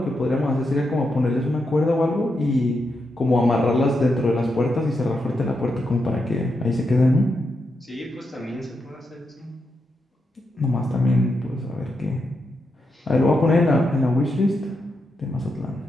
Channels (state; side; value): normal; both; correlation 0.84